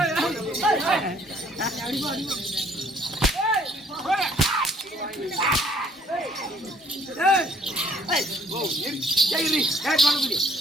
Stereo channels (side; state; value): both; normal; correlation 0.61